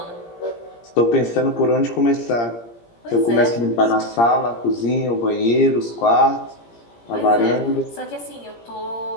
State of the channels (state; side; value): late; right; 17 ms